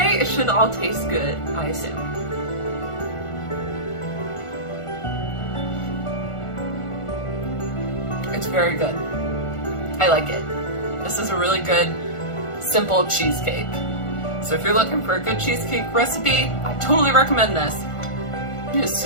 it should all taste good, I assume. It's very good. I like it. This is a really good, simple cheesecake. So if you're looking for a good cheesecake recipe, I totally recommend this. It is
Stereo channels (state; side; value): late; right; 1.4 ms